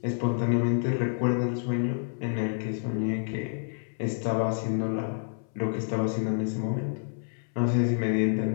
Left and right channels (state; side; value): silent; right; 59 dB below the other